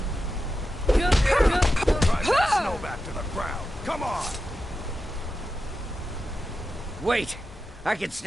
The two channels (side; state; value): both; normal; correlation 0.90